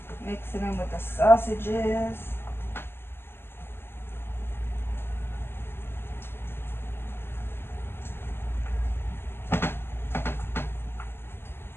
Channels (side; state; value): right; late; 0.11 ms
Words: Mix it in with the sausages.